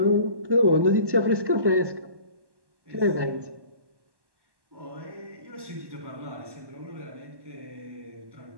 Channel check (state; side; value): late; left; 1.1 ms